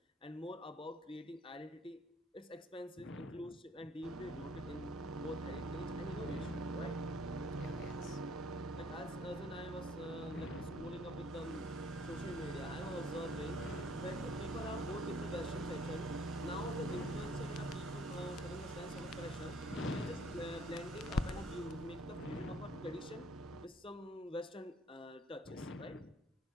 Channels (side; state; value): both; normal; correlation 0.60